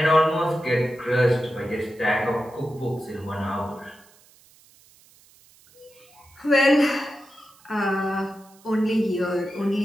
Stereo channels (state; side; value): noise; right; hiss, 28 dB below the sound